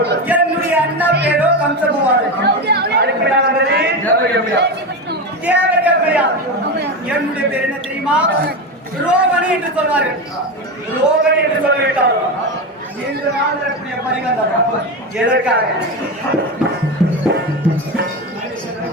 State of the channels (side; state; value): both; normal; correlation 0.18